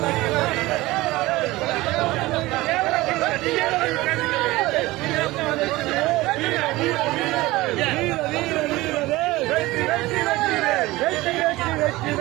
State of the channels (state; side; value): quieter; left; 19.3 dB